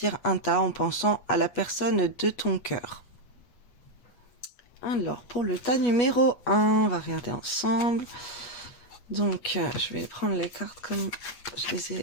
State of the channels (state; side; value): late; right; 8.5 ms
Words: un tas en pensant à la personne de ton cœur. Alors, pour le tas numéro 1, on va regarder ensemble. Donc, je vais prendre les cartes comme je les